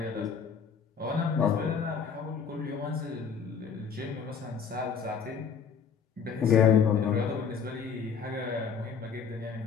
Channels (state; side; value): quieter; right; 6.4 dB